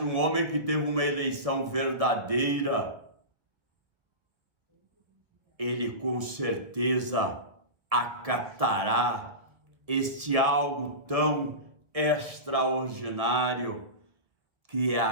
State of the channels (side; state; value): left; late; 1.7 ms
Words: um homem que teve uma eleição verdadeira, ele com certeza acatará este algo tão extraordinário que é